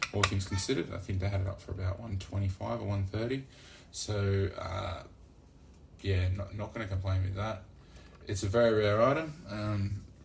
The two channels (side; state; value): both; identical; correlation 1.00